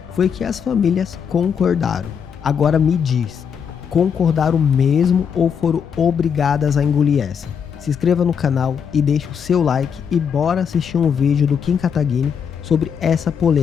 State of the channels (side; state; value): right; quieter; 7.2 dB